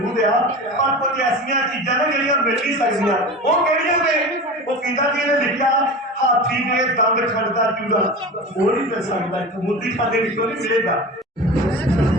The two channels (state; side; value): normal; both; correlation 0.31